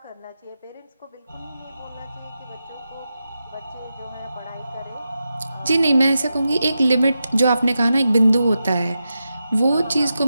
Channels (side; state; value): both; inverted; correlation -0.89